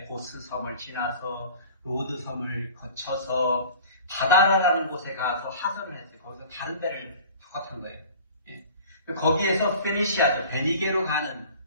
고스 섬을 지나서 로드 섬을 거쳐서 바다라는 곳에 가서 하선을 했어요. 거기서 다른 배를 타고 탄 거예요. 거기에서 페니시아죠. 베니게로 가는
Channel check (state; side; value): inverted; both; correlation -0.44